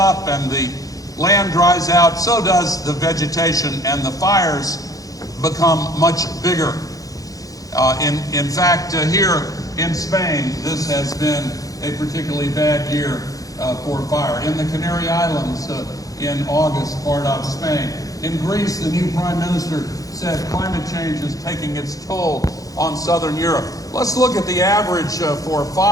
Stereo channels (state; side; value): late; right; 0.17 ms